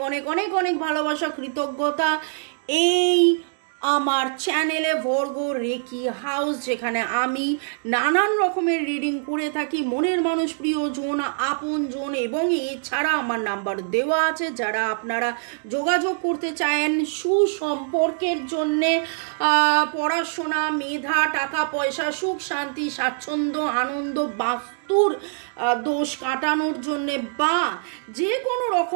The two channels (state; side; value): silent; left; digital silence